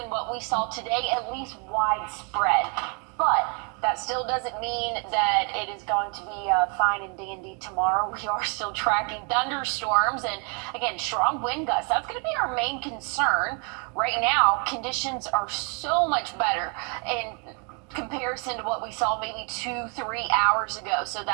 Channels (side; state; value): left; quieter; 36.1 dB